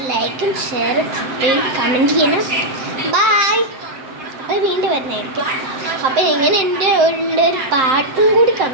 ലൈക്കും ഷെയറും സബ്സ്ക്രൈബ് കമൻറ്റ് ചെയ്യണം. ബൈ. അപ്പോൾ വീണ്ടും വരുന്നതായിരിക്കും. അപ്പോൾ ഇങ്ങനെ എൻ്റെ ഒരു പാട്ടും കൂടി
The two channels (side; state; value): left; late; 7.7 ms